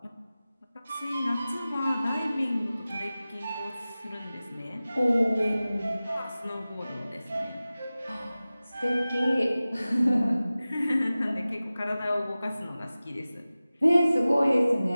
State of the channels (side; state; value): both; inverted; correlation -0.97